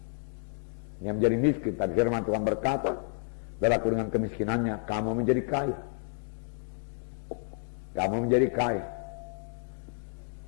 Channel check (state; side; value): silent; right; digital silence